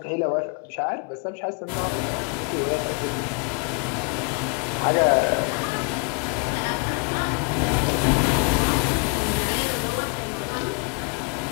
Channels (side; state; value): right; quieter; 34.1 dB